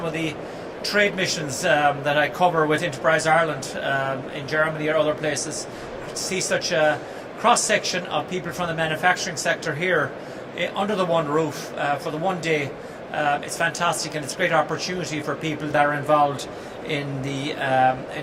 of the trade missions that I cover with Enterprise Ireland in Germany or other places. To see such a cross-section of people from the manufacturing sector here under the one roof for the one day, it's fantastic, and it's a great opportunity for people that are involved in the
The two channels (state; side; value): identical; both; correlation 1.00